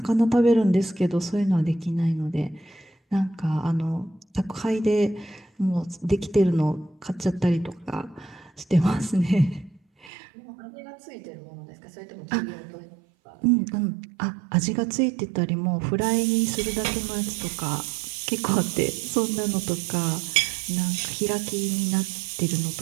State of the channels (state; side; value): drops out; left; at 10.1 s